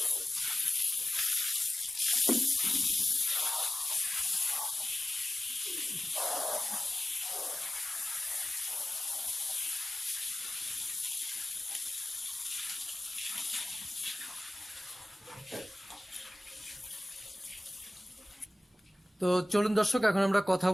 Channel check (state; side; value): normal; both; correlation 0.96